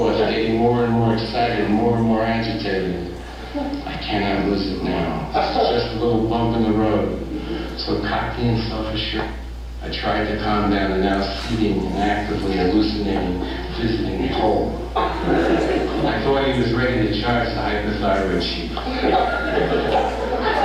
getting more and more excited and more agitated. I cannot lose it now. This is just a little bump in the road. So cocky and self-assured, I tried to calm down the now seething and actively hallucinating, visiting hole. I thought he was ready to charge the hypothyroid chief.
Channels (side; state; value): both; identical; correlation 1.00